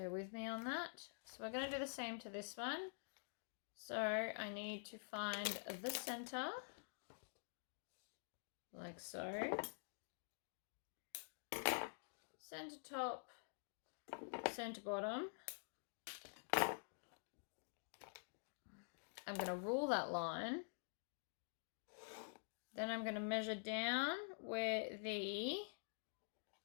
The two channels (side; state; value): right; silent; digital silence